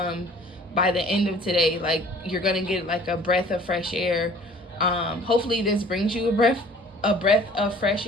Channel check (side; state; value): both; normal; correlation 0.51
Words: by the end of today. Like, you're gonna get like a breath of fresh air. Hopefully this brings you a breath of fresh